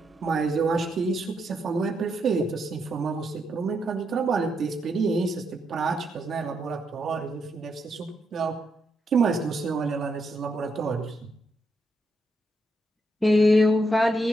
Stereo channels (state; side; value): normal; both; correlation 0.80